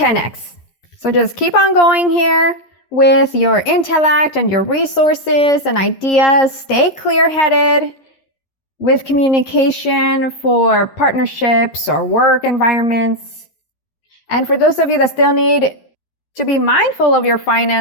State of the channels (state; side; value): late; right; 11 ms